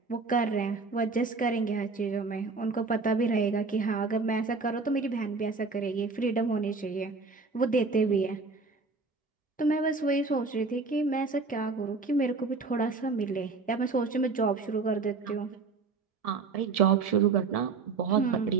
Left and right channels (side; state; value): left; quieter; 4.3 dB